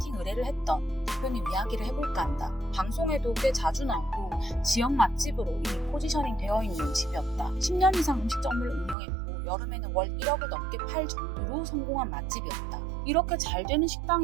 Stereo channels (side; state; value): left; drops out; at 9.0 s